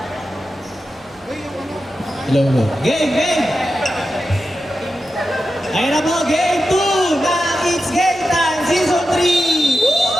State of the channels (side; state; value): both; normal; correlation 0.90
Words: Hello. Game! Ayun na po, game 2 na It's Game Time Season 3!